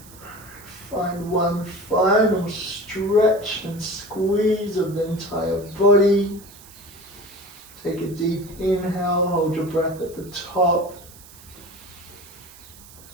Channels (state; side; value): noise; right; hiss, 20 dB below the sound